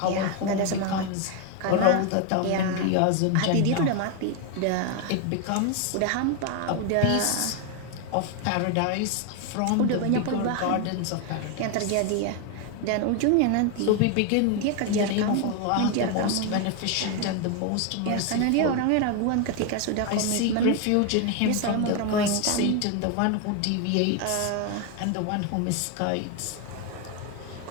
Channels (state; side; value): different; both; correlation 0.01